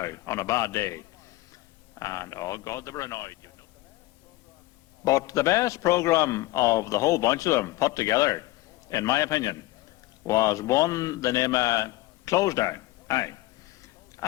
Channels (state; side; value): quieter; right; 18.4 dB